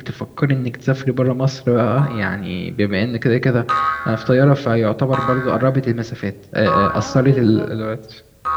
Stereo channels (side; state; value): both; identical; correlation 1.00